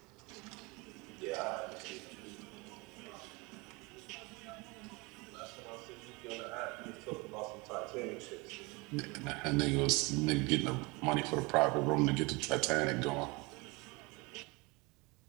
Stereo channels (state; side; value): quieter; left; 26.4 dB